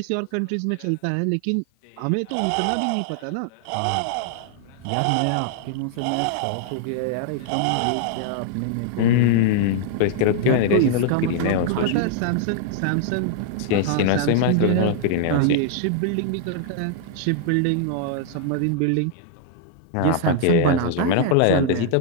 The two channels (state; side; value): different; both; correlation 0.00